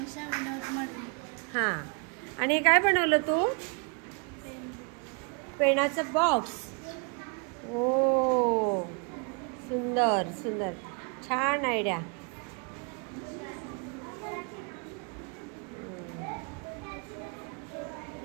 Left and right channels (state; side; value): quieter; left; 35.4 dB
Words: विनोद मडवी. हा. आणि काय बनवलं तू? पेनाचं बॉक्स. ओ सुंदर सुंदर, छान आयडिया.